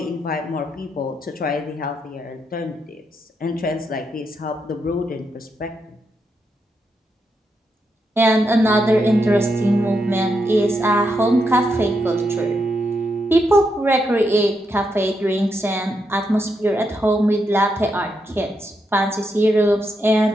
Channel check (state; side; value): normal; both; correlation 0.82